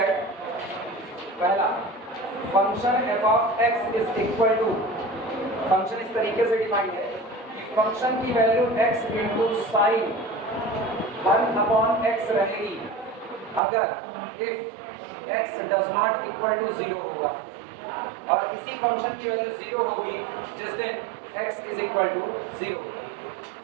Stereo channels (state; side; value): drops out; left; at 13.6 s